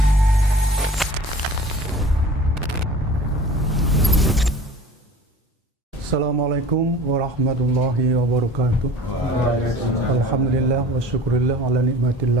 Assalamualaikum warahmatullahi wabarakatuh. Alhamdulillah wa syukurillah ala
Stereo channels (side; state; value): both; normal; correlation 0.43